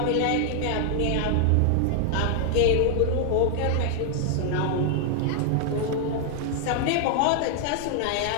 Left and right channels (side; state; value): both; different; correlation -0.01